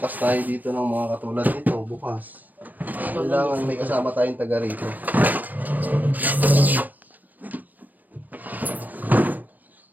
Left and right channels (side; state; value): left; late; 0.083 ms